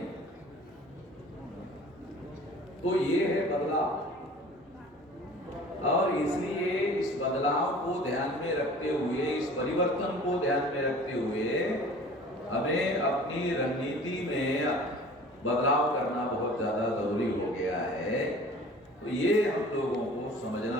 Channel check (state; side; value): normal; both; correlation 0.45